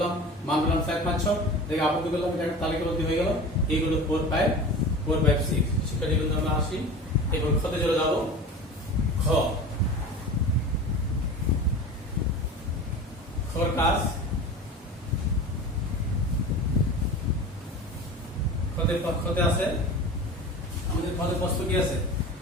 মান পেলাম 4 5 6 দেখে আবদ্ধ করলাম এটা তালিকাবদ্ধ হয়ে গেল এইগুলো 4 5 6 শিক্ষার্থীবৃন্দ আমরা আসি এরপর খতে চলে যাব খর কাজ খতে আছে আমাদের খতের প্রশ্ন কি আছে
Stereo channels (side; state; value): both; normal; correlation 0.34